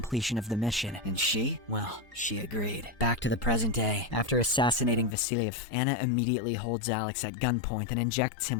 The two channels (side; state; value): right; drops out; at 5.2 s